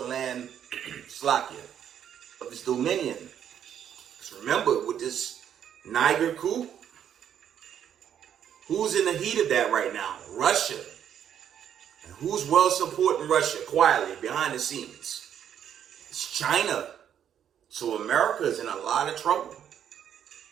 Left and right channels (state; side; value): quieter; left; 9.3 dB